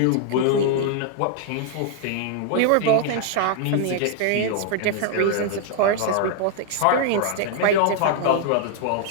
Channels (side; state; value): both; different; correlation 0.00